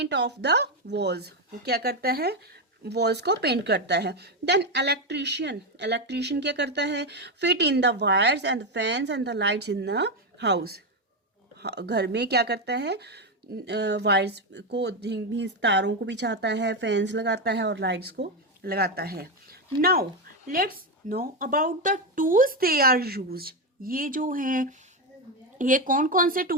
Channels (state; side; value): normal; both; correlation 0.09